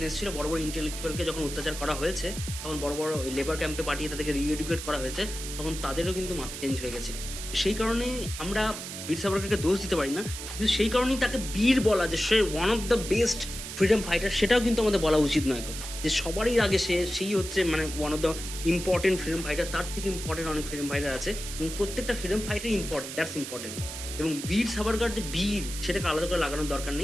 এসেছিল, বড় বড় ইন্টেলেকচুয়ালকে যখন অত্যাচার করা হয়েছে, তখন বড় বড় লেবার ক্যাম্পে পাঠিয়ে তাদেরকে রিএডুকেট করা হয়েছে, তখন তাদেরও কিন্তু মাথা চেঞ্জ হয়ে গেছিল। সেই কারণেই আমরা বীর সাভারকরকে দোষ দিতে পারি না, কিন্তু সেই কারণেই তাকে বীর বলা, যে সে one of the best freedom fighter, সেটাও কিন্তু আমাদের বলা উচিত নয়। যে সবারই আগে সেই হচ্ছে মানে one of the important freedom fighter, তার থেকে ইম্পর্টেন্ট অনেক ফ্রিডম ফাইটার আছে, এবং প্রত্যেকটা freedom fighter important, that's important. এবং বীর সাভারকর যে বীর, সেটাকে আলাদা করে লাগানোর দরকার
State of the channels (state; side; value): noise; right; hiss, 8 dB below the sound